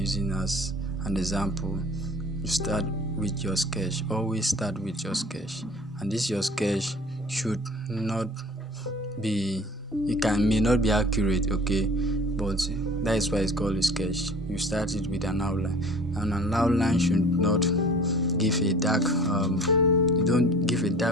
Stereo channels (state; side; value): normal; both; correlation 0.46